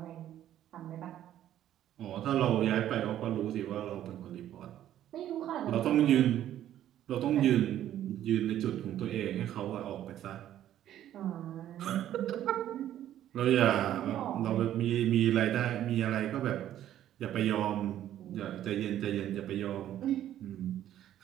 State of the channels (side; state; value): left; quieter; 11.8 dB